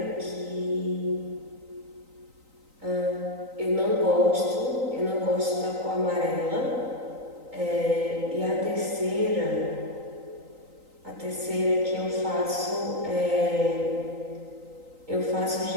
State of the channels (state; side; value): late; left; 3.9 ms